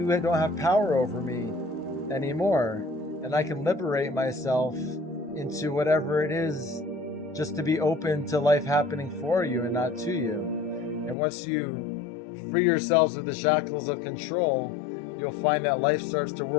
don't have power over me anymore. And I can liberate myself into whatever it is, just to be open to life happening for you and not to you. And once you free yourselves of the shackles of control, you'll find that life starts to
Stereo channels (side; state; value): right; drops out; at 11.2 s